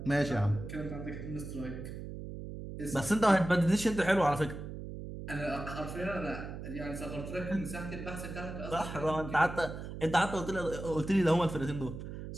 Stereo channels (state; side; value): noise; right; hum, 9 dB below the sound